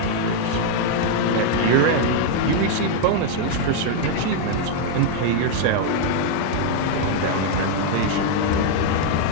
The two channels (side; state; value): both; different; correlation 0.00